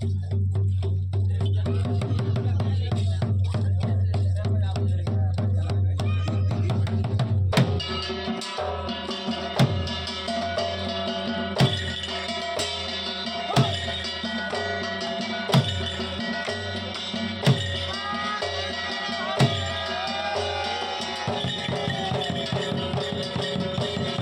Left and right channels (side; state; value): both; identical; correlation 1.00